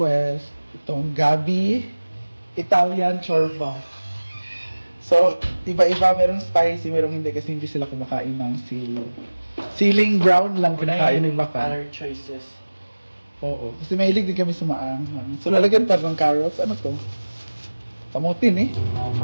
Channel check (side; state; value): both; inverted; correlation -1.00